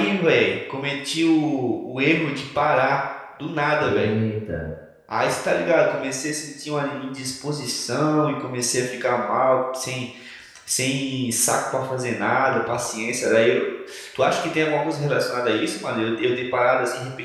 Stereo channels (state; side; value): identical; both; correlation 1.00